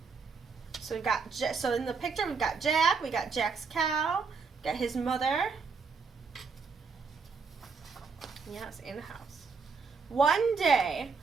So so in the picture we've got Jack, we got Jack's cow, got his mother. Yes, in the house. One day,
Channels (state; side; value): quieter; left; 5.0 dB